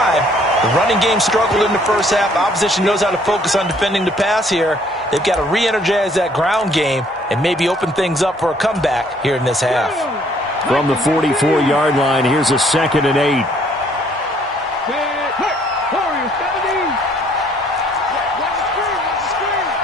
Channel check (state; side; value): normal; both; correlation 0.62